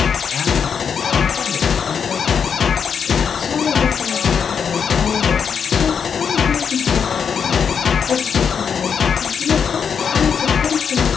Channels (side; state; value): right; quieter; 6.8 dB